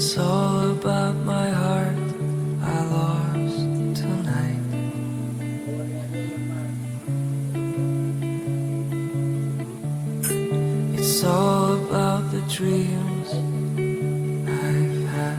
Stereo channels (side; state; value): both; identical; correlation 1.00